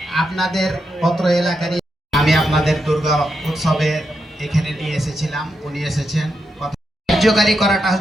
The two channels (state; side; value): normal; both; correlation 0.84